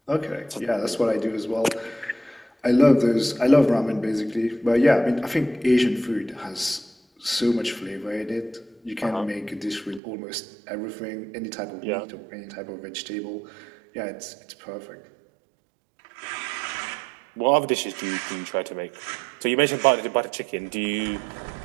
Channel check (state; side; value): drops out; left; at 10.0 s